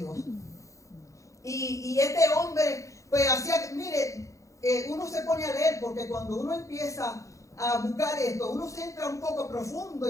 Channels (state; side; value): late; right; 0.15 ms